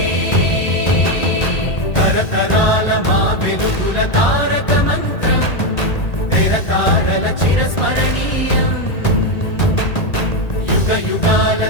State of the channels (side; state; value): right; late; 1.8 ms